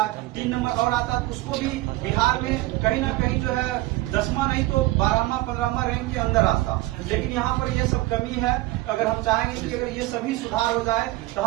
3 नंबर और आता है, उसको भी बिहार में कहीं ना कहीं जो है 10वां नहीं तो 12वां 15वां रैंक के अंदर आता। लेकिन यहाँ पर ये सब कमी है। अगर हम चाहेंगे कि अगर ये सभी सुधार हो जाए तो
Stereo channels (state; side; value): quieter; left; 18.9 dB